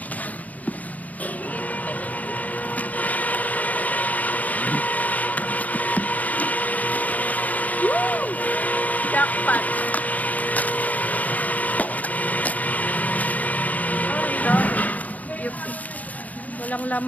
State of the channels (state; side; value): late; right; 0.076 ms